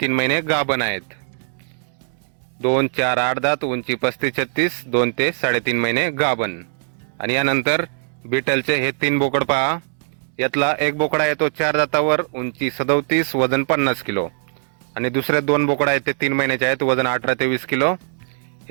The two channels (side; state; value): left; silent; digital silence